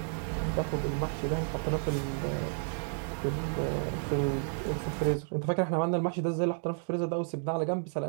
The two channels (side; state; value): left; silent; 57 dB below the other